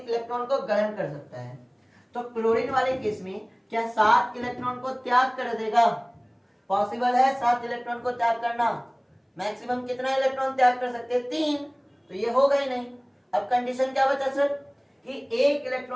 को ग्रहण कर सकता है। तो क्लोरीन वाले केस में क्या 7 इलेक्ट्रॉन को त्याग कर देगा? पॉसिबल है 7 इलेक्ट्रॉन को त्याग करना। मैक्सिमम कितना इलेक्ट्रॉन त्याग कर सकते हैं? 3। तो ये होगा ही नहीं। अब कंडीशन क्या बचा सर? कि 1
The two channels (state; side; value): identical; both; correlation 1.00